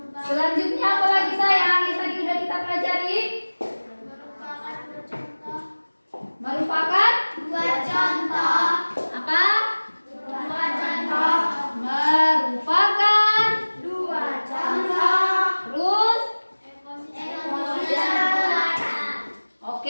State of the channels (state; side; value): inverted; both; correlation -1.00